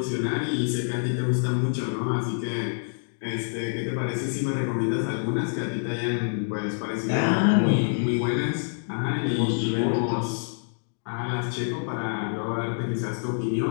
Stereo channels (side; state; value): right; silent; digital silence